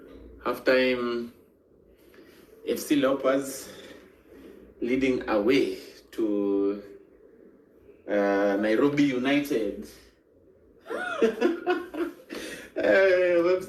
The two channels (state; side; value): identical; both; correlation 1.00